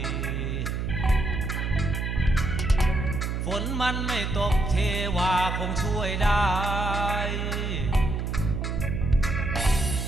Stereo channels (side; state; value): right; noise; hum, 2 dB below the sound